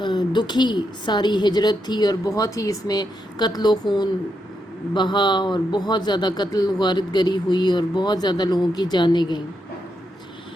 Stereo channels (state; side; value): normal; both; correlation 0.82